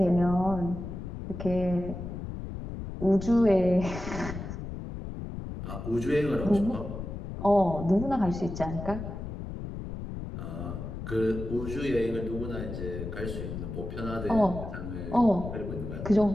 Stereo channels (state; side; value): noise; left; rumble, 7 dB below the sound